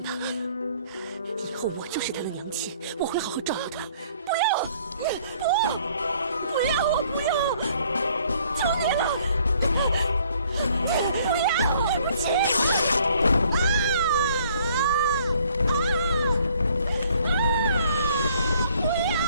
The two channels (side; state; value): both; inverted; correlation -0.60